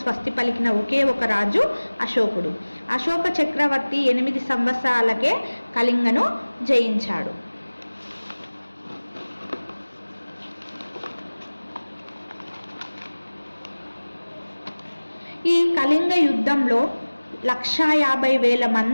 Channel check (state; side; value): inverted; both; correlation -1.00